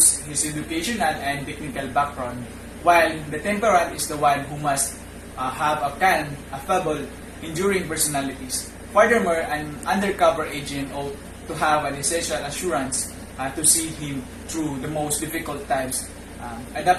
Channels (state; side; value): identical; both; correlation 1.00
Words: his educational and technical background, while the temperament is the one who must have a calm, affable, enduring personalities. Furthermore, an undercover agent ought to have an essential assurance to see him through the most difficult times,